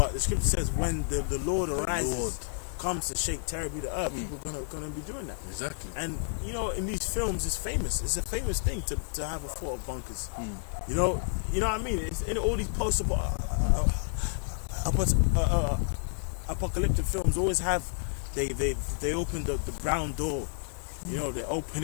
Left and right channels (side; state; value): right; silent; 58 dB below the other